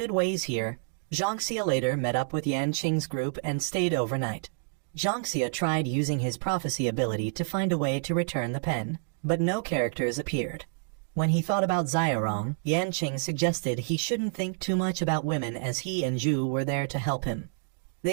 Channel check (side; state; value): left; silent; digital silence